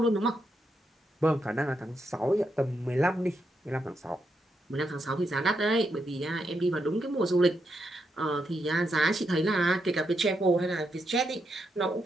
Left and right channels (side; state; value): both; normal; correlation 0.82